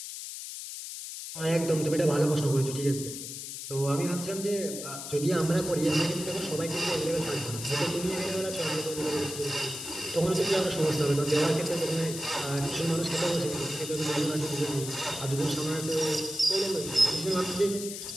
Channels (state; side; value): noise; left; hiss, 8 dB below the sound